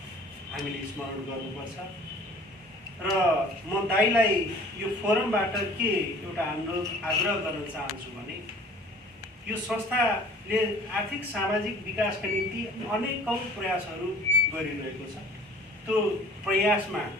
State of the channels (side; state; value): both; normal; correlation 0.49